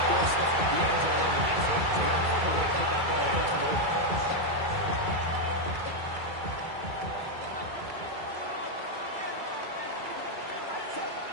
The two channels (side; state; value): left; late; 2.3 ms